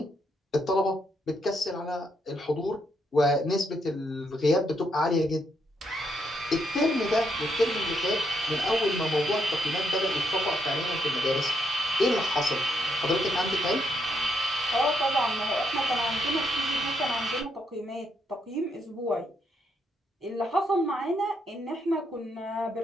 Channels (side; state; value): both; normal; correlation 0.77